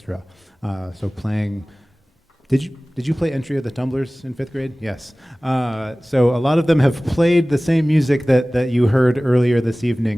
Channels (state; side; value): normal; both; correlation 0.98